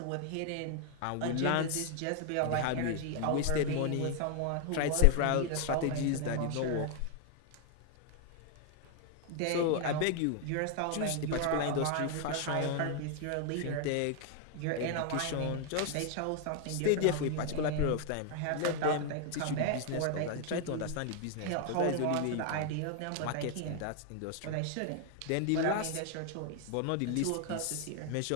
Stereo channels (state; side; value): different; both; correlation 0.00